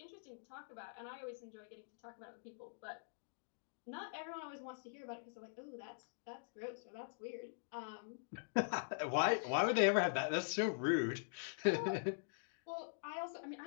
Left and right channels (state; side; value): silent; right; digital silence